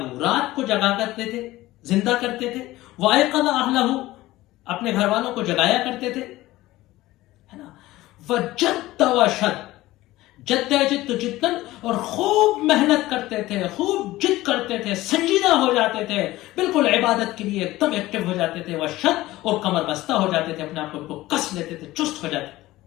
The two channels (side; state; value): right; quieter; 17.3 dB